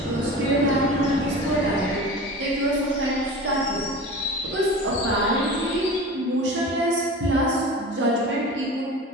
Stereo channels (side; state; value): both; normal; correlation 0.34